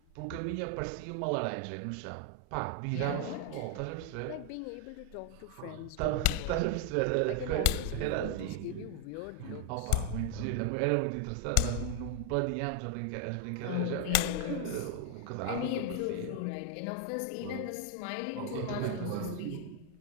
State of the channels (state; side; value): different; both; correlation 0.00